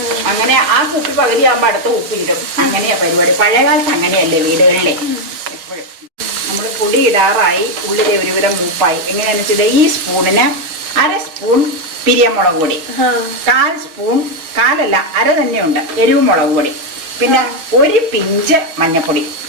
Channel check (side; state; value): left; late; 6.2 ms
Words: അങ്ങനെ ആ കുപ്പി പകുതിയാകുമ്പോൾ അടുത്ത കുപ്പി ഇടും. അങ്ങനെയാ പരിപാടി. പഴയകാലത്ത് അങ്ങനെയല്ലേ വീടുകളിലെ. എപ്പോഴും നമ്മൾ പൊടി ഇടാറായി, ഉള്ളിലെ ഒരുവിധം മൂപ്പായി. എങ്ങനെയാണെന്ന് വെച്ചാൽ ഈ സ്പൂണിന് 1/2 സ്പൂൺ പിരിയമുളക് പൊടി, 1/4 സ്പൂൺ, 1/4 അര തന്നെയുണ്ട് എരിവ് മുളക് പൊടി, പിന്നെ 1 പിഞ്ച് മഞ്ഞപ്പൊടി.